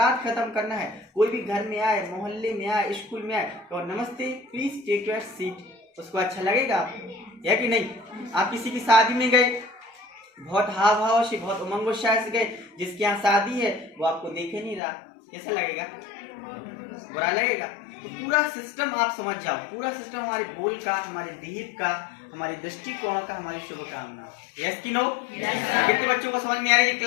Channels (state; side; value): drops out; right; at 14.8 s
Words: खत्म करना है, कोई भी घर में आए, मोहल्ले में आए, स्कूल में आए, तो नमस्ते, प्लीज टेक योर सीट। उसको अच्छा लगेगा या कि नहीं? आप किसी की शादी में गए, बहुत हाव भाव से, बहुत उमंग उत्साह से गए, जिसके यहाँ शादी है वो आपको देखे नहीं रहा, कैसा लगेगा? बुरा लगेगा। तो पूरा सिस्टम आप समझ जाओ, पूरा सिस्टम हमारे बोल का, हमारे देह का, हमारी दृष्टिकोण का, हमारी शुभकामना। यस की नो? कितने बच्चों को समझ में आ रही है